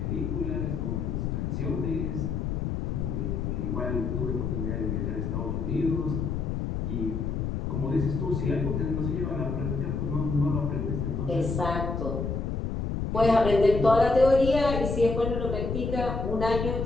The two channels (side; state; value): left; noise; rumble, 2 dB below the sound